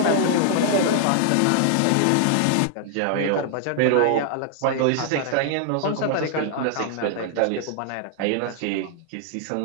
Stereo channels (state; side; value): different; both; correlation 0.00